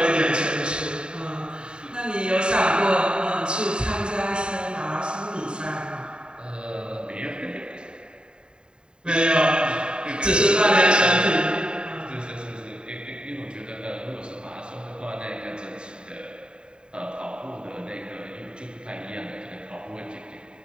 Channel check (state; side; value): late; left; 0.049 ms